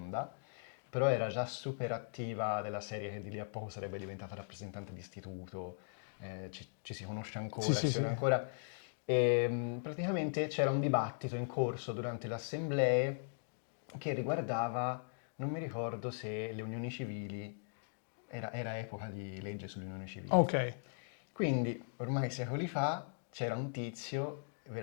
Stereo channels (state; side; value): silent; right; digital silence